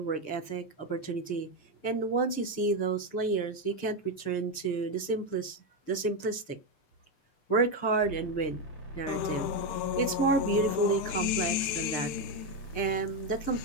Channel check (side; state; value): right; late; 6.7 ms